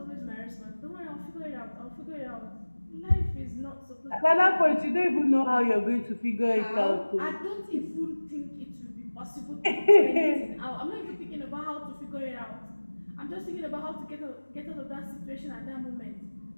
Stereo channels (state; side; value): inverted; both; correlation -1.00